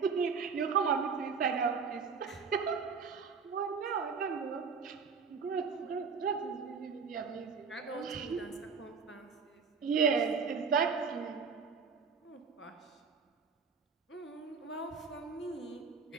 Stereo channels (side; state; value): left; quieter; 5.7 dB